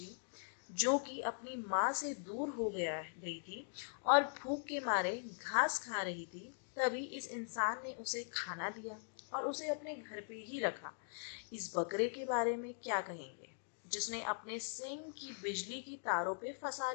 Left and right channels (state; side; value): silent; right; digital silence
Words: जो कि अपनी माँ से दूर हो गई थी और भूख के मारे घास खा रही थी। तभी इस इंसान ने उसे खाना दिया और उसे अपने घर पे ही रखा। इस बकरे के बारे में क्या कहेंगे, जिसने अपने सींग की बिजली की तारों पे फंसा